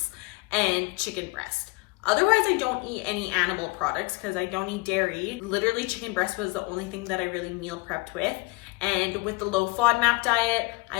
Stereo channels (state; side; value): quieter; right; 26.0 dB